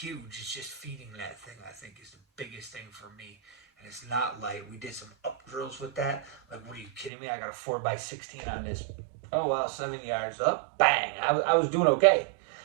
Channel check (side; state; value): left; drops out; at 7.1 s